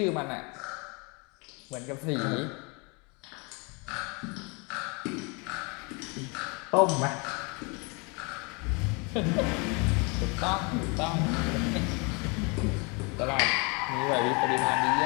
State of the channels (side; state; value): right; quieter; 30.8 dB